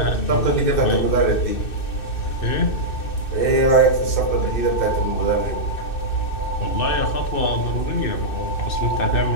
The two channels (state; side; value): late; right; 2.6 ms